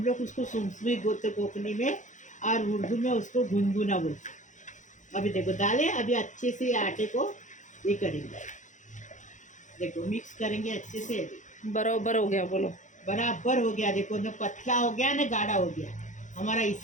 लोग उसको सुनसुनित बोलते कोकनी में, और उर्दू में उसको गुनगुना बोलते। अभी देखो डाले। अभी अच्छे से आटे को ये करेंगे। देखो मिक्स करेंगे अच्छे से। बराबर हो गया, बोलो। बराबर हो गया। देखो न पतला हो गया न गाढ़ा हो गया, हमारा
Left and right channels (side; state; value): right; late; 0.36 ms